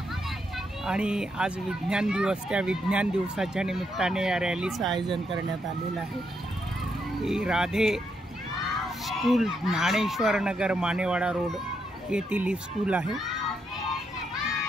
आणि आज विज्ञान दिवस, त्या विज्ञान दिवसाच्या निमित्ताने या रॅलीचं आयोजन करण्यात आलेलं आहे। ही राधे स्कूल ज्ञानेश्वर नगर मानेवाडा रोड येथील ही स्कूल आहे।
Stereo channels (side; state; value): both; normal; correlation 0.79